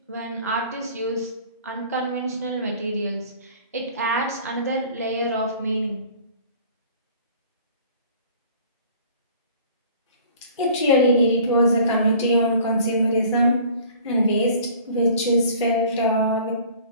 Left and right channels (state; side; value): inverted; both; correlation -0.49